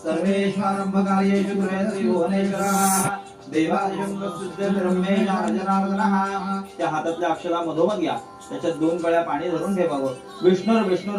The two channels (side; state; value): both; identical; correlation 1.00